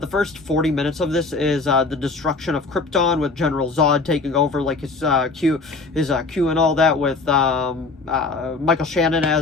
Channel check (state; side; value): quieter; right; 3.8 dB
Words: first 40 minutes of this is the destruction of Krypton with General Zod taking over, like his Q and all that, with Michael Shannon